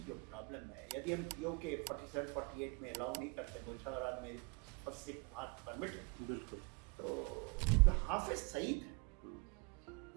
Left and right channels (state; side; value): quieter; left; 31.3 dB